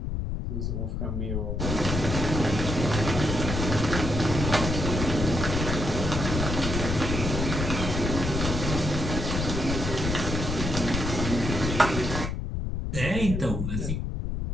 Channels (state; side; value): noise; left; rumble, 2 dB below the sound